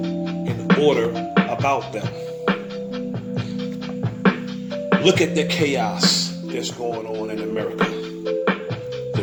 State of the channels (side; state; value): both; identical; correlation 1.00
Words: order about them. Look at the chaos that's going on in America. The